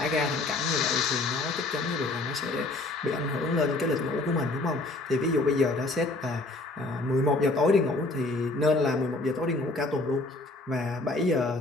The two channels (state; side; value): quieter; right; 3.0 dB